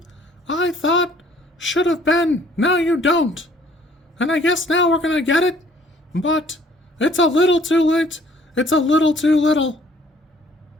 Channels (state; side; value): normal; both; correlation 0.59